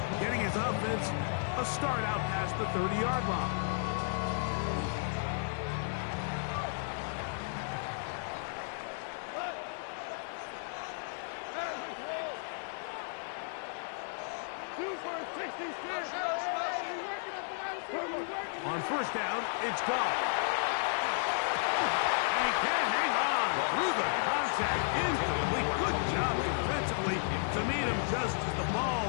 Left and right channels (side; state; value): right; silent; digital silence